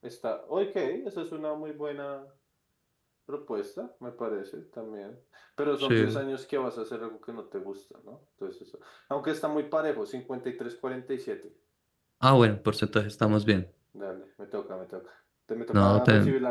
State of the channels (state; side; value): identical; both; correlation 1.00